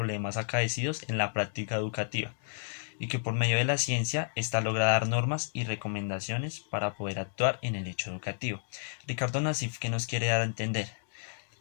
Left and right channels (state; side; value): silent; right; digital silence